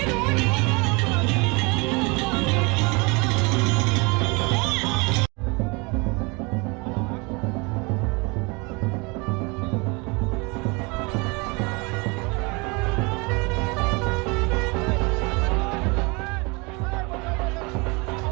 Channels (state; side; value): quieter; left; 28.4 dB